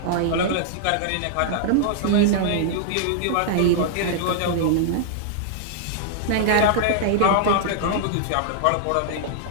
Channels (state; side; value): different; both; correlation -0.01